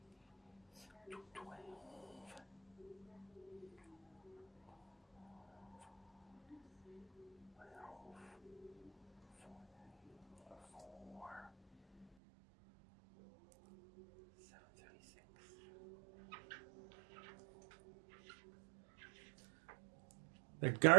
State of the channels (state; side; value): drops out; left; at 12.1 s